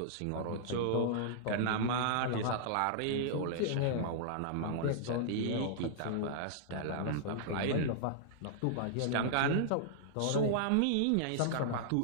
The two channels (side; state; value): both; different; correlation -0.01